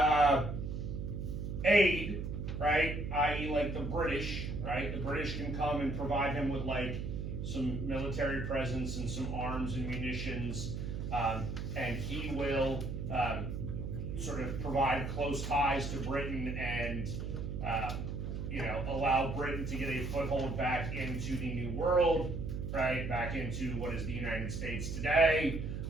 aid, right? I.e. like the British, right? The British can come and provide him with like some military presence and some arms and munitions. And he will sort of provide close ties to Britain and, allow Britain to get a foothold back into the New World, right? Back into what is the United States today.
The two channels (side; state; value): right; noise; hum, 4 dB below the sound